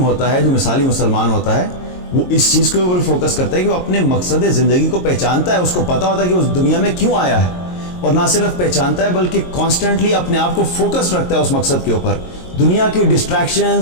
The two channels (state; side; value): late; right; 22 ms